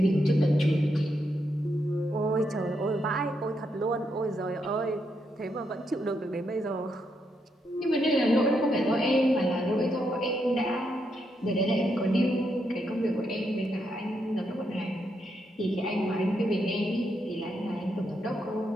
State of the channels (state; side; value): normal; both; correlation 0.80